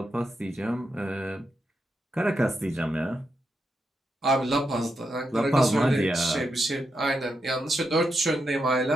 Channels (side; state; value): both; normal; correlation 0.85